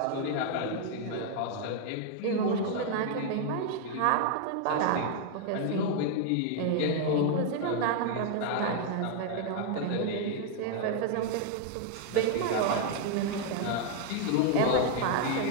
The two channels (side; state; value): both; different; correlation 0.00